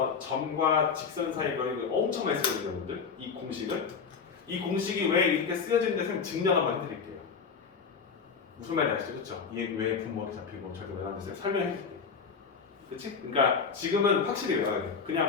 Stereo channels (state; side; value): quieter; right; 5.8 dB